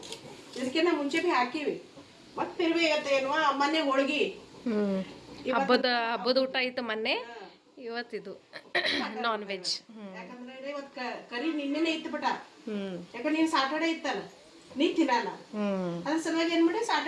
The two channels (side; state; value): both; identical; correlation 1.00